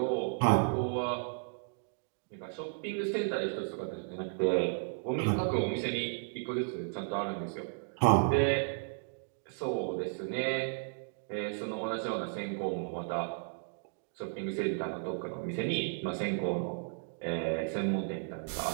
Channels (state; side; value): silent; left; digital silence